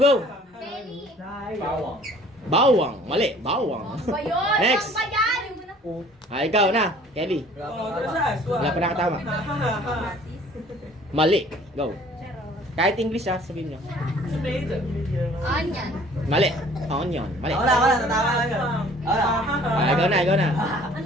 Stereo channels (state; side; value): normal; both; correlation 0.53